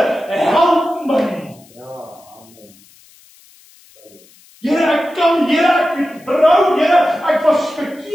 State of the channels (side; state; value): left; noise; hiss, 27 dB below the sound